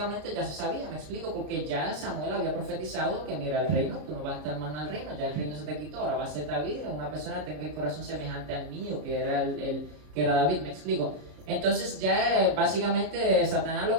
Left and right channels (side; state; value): left; late; 33 ms